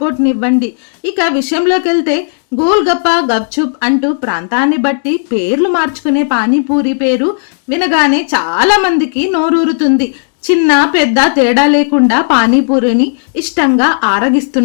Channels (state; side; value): silent; right; digital silence